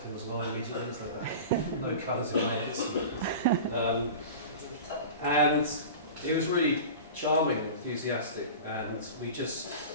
him as well. Immediately, it's like that. No colours in layers. And he was really charming and enthusiastic. And we just,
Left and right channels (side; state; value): both; inverted; correlation -0.34